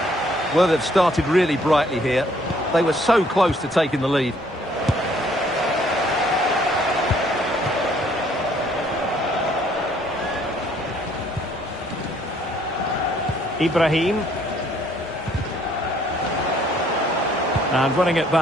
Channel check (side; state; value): both; normal; correlation 0.63